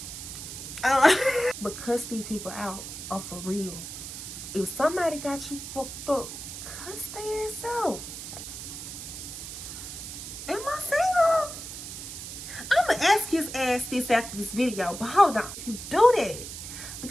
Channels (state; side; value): noise; right; hiss, 9 dB below the sound